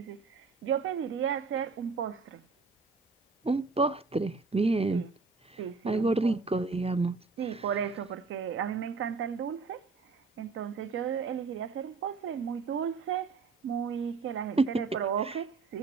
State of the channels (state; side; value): quieter; left; 4.5 dB